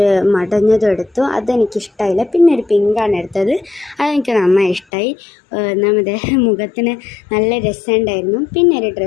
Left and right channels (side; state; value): right; drops out; at 4.9 s